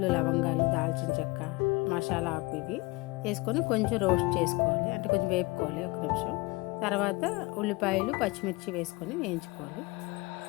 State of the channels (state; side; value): quieter; right; 24.1 dB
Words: లవంగాలు, దాల్చిన చెక్క, మసాలా ఆకు ఇవి వేసుకొని కొంచెం రోస్ట్ చేసుకోవాలి, అంటే కొంచెం వేపుకోవాలి ఒక నిమిషం. తర్వాత ఉల్లిపాయలు, పచ్చిమిర్చి వేసుకొని వేయించుకోవాలి.